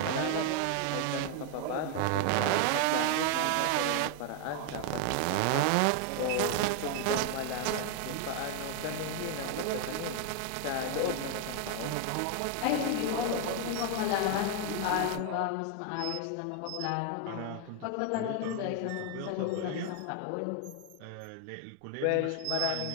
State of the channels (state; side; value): different; both; correlation 0.00